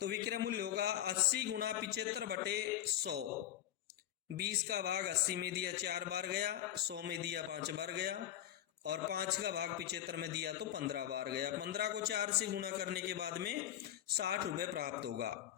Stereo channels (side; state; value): right; quieter; 11.8 dB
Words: विक्रय मूल्य होगा 80 गुणा 75 बटे 100। 20 का भाग 80 में दिया 4 बार गया, 100 में दिया 5 बार गया और 5 का भाग 75 में दिया तो 15 बार गया। 15 को 4 से गुणा करने के बाद में 60 रुपए प्राप्त होगा।